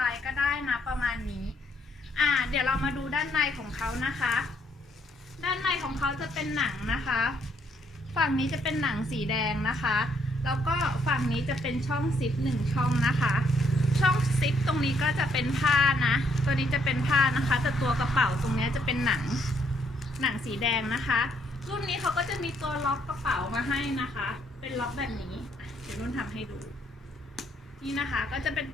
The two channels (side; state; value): both; normal; correlation 0.71